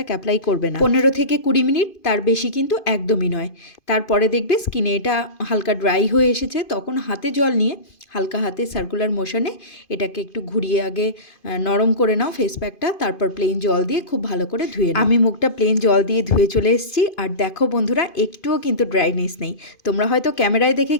অ্যাপ্লাই করবে না। 15 থেকে 20 মিনিট, তার বেশি কিন্তু একদমই নয়। তারপরে দেখবে স্কিনে এটা হালকা ড্রাই হয়ে এসেছে, তখন হাতে জল নিয়ে হালকা হাতে সার্কুলার মোশনে এটাকে একটু ঘুরিয়ে আগে নরম করে নাও ফেস প্যাকটা। তারপর প্লেন জল দিয়ে খুব ভালো করে ধুয়ে নাও। আমি মুখটা প্লেন জল দিয়ে ধুয়ে চলে এসেছি। আর দেখো বন্ধুরা, একটুও কিন্তু ড্রাইনেস নেই। তোমরা হয়তো ক্যামেরায় দেখে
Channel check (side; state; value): right; late; 2.5 ms